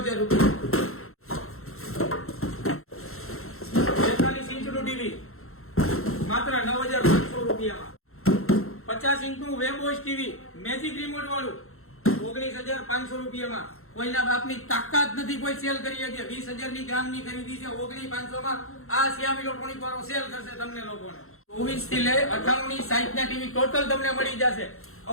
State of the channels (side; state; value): right; late; 0.62 ms